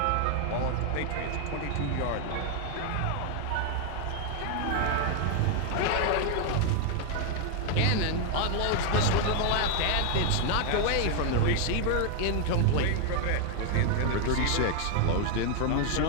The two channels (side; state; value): both; different; correlation 0.01